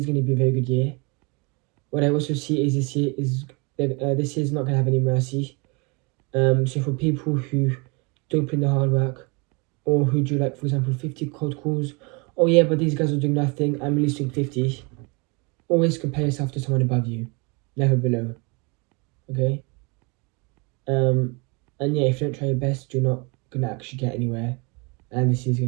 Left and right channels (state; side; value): quieter; left; 30.2 dB